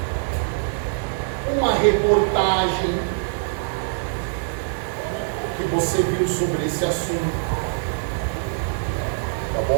Uma reportagem que você viu sobre esse assunto. Tá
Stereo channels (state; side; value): silent; left; digital silence